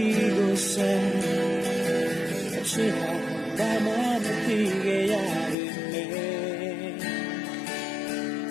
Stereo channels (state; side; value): drops out; right; at 5.6 s